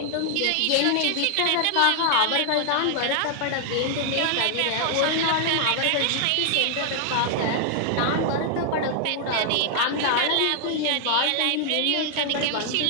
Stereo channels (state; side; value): different; both; correlation 0.00